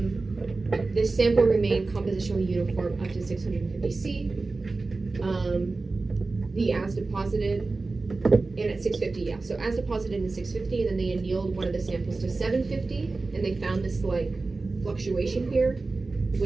This sample remained compositionally uniform up to 650 C. The as deposited, and at 650, yeah. So as deposited in 650, and then they annealed one of the samples to 750, and they found this like fluctuation here,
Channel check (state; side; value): quieter; left; 3.6 dB